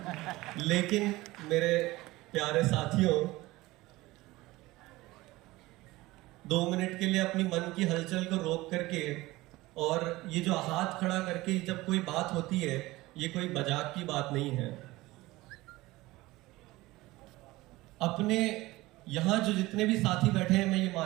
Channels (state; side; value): quieter; left; 19.4 dB